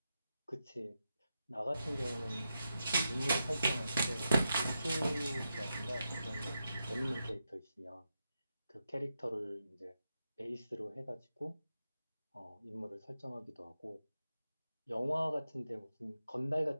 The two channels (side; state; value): both; inverted; correlation -0.87